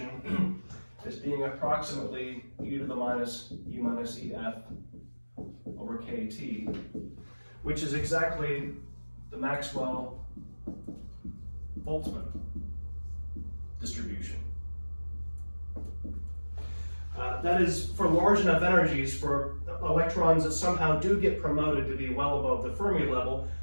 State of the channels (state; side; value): inverted; both; correlation -1.00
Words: as being approximately e to the minus E minus EF over KT, which is exactly the Maxwell-Boltzmann distribution. That is for large enough energies for electrons that somehow do get promoted to be well above the Fermi level,